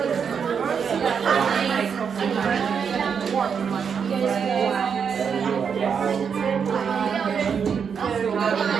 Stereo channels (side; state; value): left; quieter; 6.7 dB